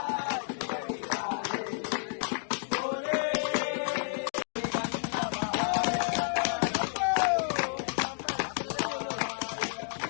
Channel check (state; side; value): silent; right; digital silence